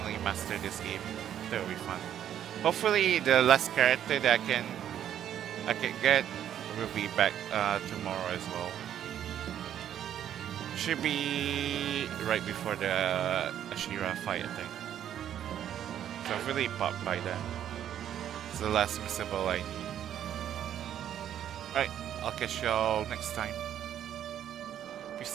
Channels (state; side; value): quieter; left; 10.3 dB